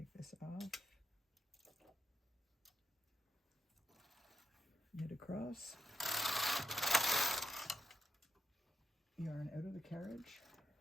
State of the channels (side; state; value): both; normal; correlation 0.82